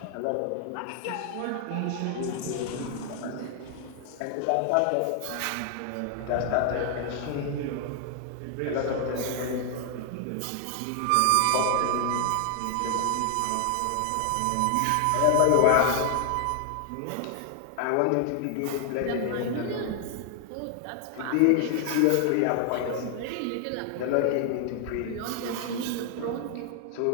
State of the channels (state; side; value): different; both; correlation 0.00